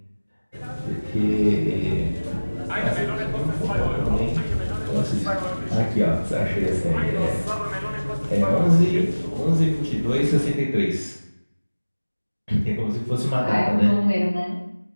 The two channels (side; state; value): both; inverted; correlation -1.00